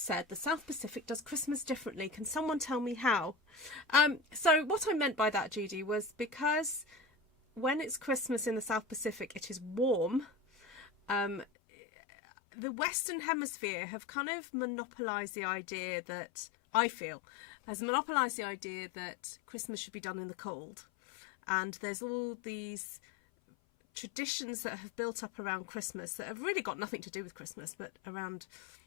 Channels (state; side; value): drops out; right; at 11.5 s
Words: the South Pacific does Christmas differently. Can someone tell me how? So what I meant by that, Judy, was because when it's Christmas in the South Pacific, it is warm. The Western Hemisphere have kind of monopolised the idea that, I feel, has monopolised the idea that Christmas should be done in the cold. And there's all these traditions that have built up around Christmas that have really got nothing to do with Christmas, but around,